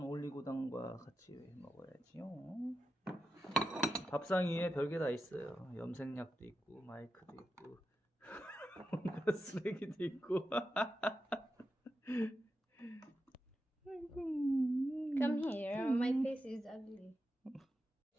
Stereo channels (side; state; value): both; normal; correlation 0.89